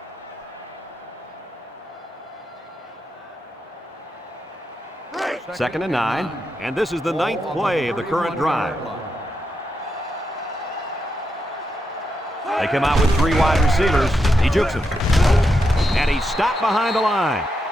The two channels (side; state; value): both; normal; correlation 0.84